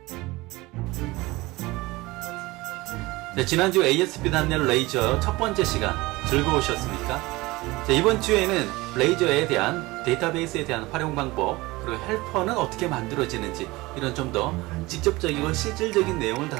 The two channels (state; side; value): quieter; left; 21.1 dB